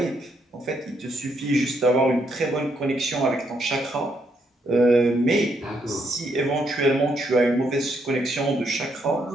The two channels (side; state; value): both; normal; correlation 0.75